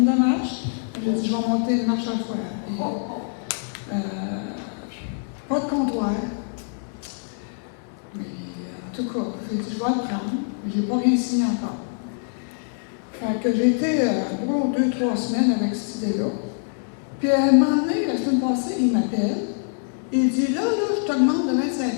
de marches. J'ai dit, je vais monter une marche à la fois. Et, pas de comptoir. Mais en tout cas, j'ai dit, je vais le prendre, mais je n'ai pas rien signé encore. Fait que j'ai été pour 2-3 semaines avec cette idée-là. Puis à un moment donné, la semaine passée, il m'appelle. Il dit, là, je te demande de mettre 5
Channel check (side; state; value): right; silent; 62 dB below the other